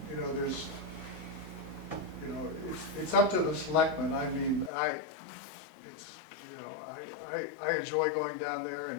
There's, it's up to the selectmen. I mean, I enjoy going down there,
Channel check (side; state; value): right; drops out; at 4.7 s